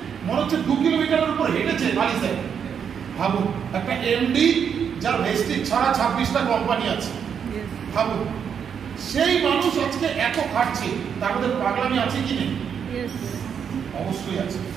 মনে হচ্ছে 2 কিলোমিটারের উপর হেঁটেছে বালি স্যার। ভাবুন, একটা এমডি যার ভেস্টিজ ছাড়া 26টা কোম্পানি আছে, ভাবুন সেই মানুষ আজকে এত খাটছে, তার মধ্যে পাগলামি আছে কি নেই? অবশ্যই আছে।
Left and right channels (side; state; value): left; quieter; 7.5 dB